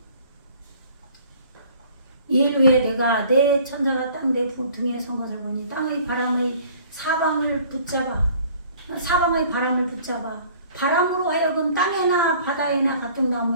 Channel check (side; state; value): both; inverted; correlation -0.52